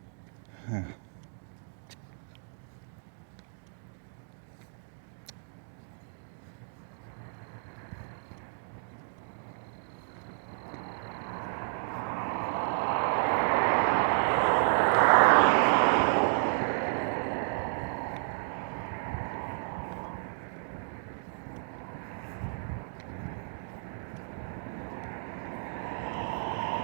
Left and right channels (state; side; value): silent; left; digital silence